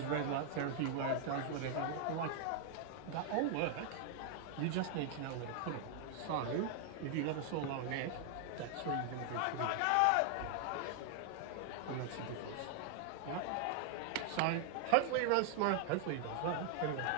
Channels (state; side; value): different; both; correlation 0.00